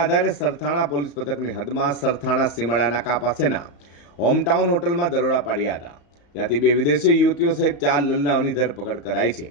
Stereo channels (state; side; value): late; right; 35 ms